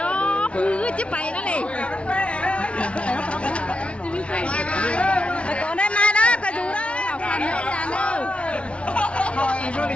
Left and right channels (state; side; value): late; right; 0.061 ms